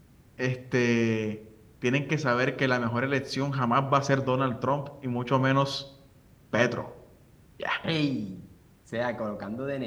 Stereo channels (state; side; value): identical; both; correlation 1.00